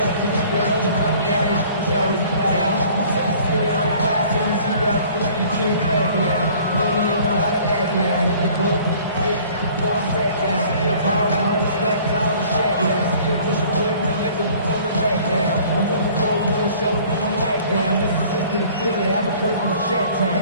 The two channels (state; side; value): inverted; both; correlation -0.52